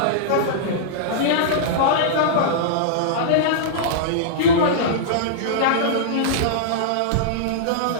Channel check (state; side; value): different; both; correlation -0.03